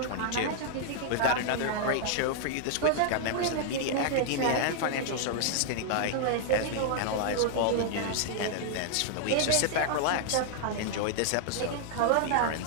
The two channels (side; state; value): both; different; correlation -0.01